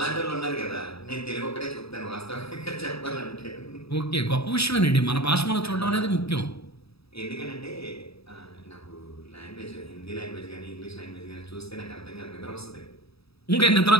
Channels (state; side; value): late; right; 0.77 ms